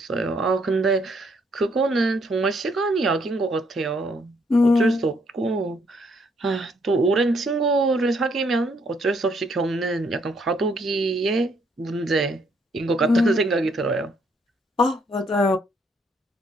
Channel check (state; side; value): normal; both; correlation 0.70